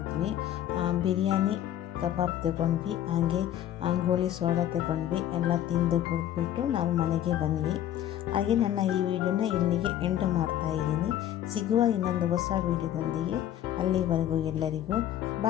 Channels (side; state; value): right; quieter; 11.6 dB